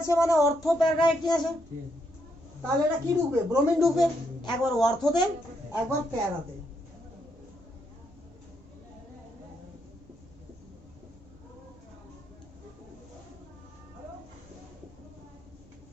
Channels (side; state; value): right; noise; rumble, 25 dB below the sound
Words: মানে অর্থ প্যারাডাইরেক্টিং আছে, তাহলে এটা কি ঢুকবে? ব্রোমিন ঢুকবে, একবার অর্থতে একবার প্যারাতে।